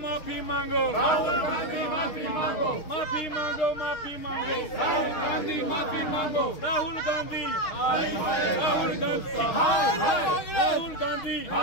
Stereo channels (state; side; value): late; right; 6.5 ms